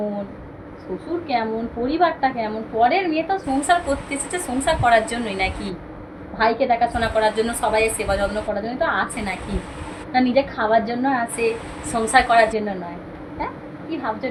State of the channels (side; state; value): both; identical; correlation 1.00